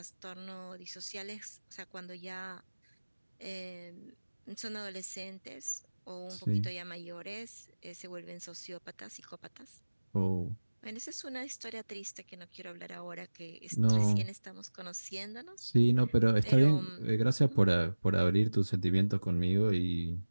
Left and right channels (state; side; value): inverted; both; correlation -1.00